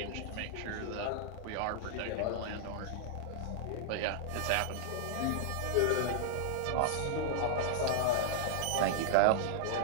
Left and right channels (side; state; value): both; different; correlation -0.01